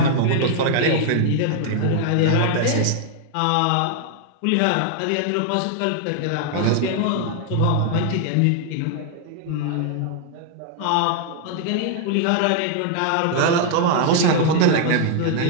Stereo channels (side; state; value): both; different; correlation 0.00